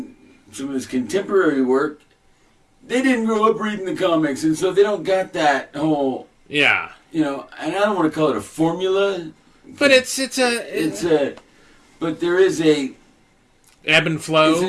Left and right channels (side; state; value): both; identical; correlation 1.00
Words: some of his contemporary work, they didn't grow up reading the comics, and so they don't got that whole. Yeah. And I don't want to call it a formula. But but there is a ebb and flow. It's a